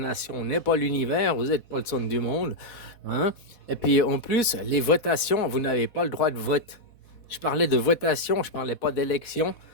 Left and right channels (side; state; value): right; late; 4.1 ms